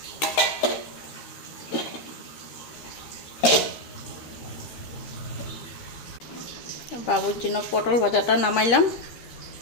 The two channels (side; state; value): right; late; 13 ms